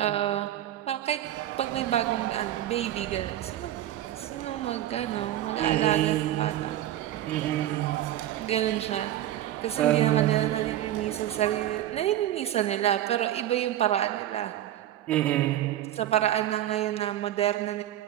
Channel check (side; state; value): left; quieter; 12.7 dB